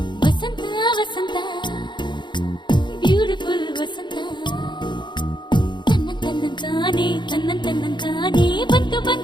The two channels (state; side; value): late; right; 0.22 ms